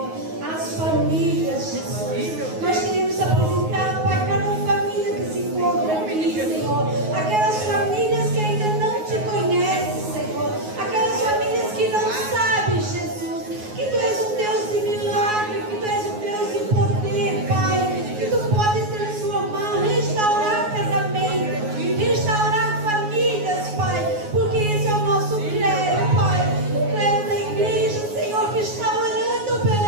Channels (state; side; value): late; left; 9.5 ms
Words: as famílias, Jesus. Nós queremos apresentar para cada família que se encontra aqui, Senhor. Aquelas famílias que ainda não te conhecem, Senhor. Aquelas famílias que não sabem, Jesus, que Tu és um Deus de milagre, que Tu és um Deus de poder, Pai. Que Tu podes transformar, restaurar casamento, restaurar famílias, Pai. Porque esse é o nosso clero, Pai. O clero da igreja, Senhor, que está orando